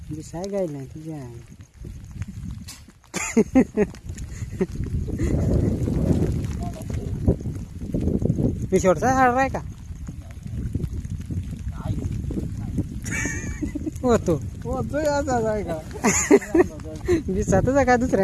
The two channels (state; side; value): identical; both; correlation 1.00